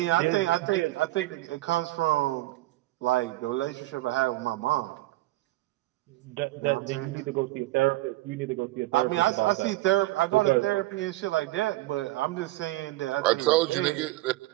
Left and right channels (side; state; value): left; quieter; 18.1 dB